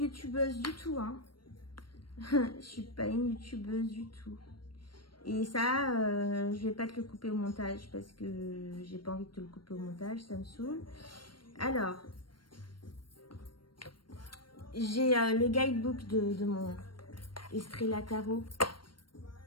du tout, hein. Je suis pas une youtubeuse du tout. Et ça, je vais pas te le couper au montage parce que j'ai pas envie de te le couper au montage, ça me saoule. Alors, j'ai le guidebook de mon Estrella Tarot.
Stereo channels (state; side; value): late; right; 0.72 ms